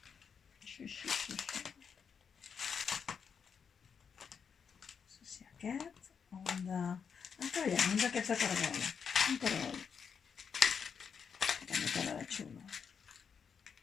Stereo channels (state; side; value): quieter; right; 6.6 dB